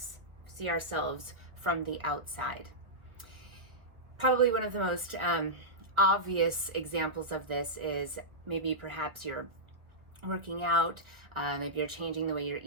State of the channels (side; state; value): left; late; 1.6 ms